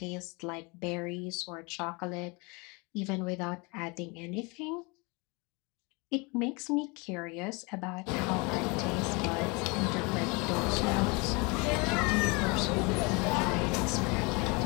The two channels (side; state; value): right; quieter; 28.5 dB